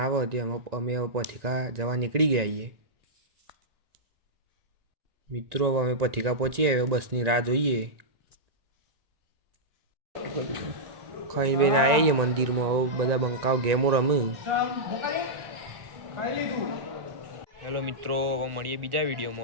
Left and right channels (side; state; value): left; late; 1.9 ms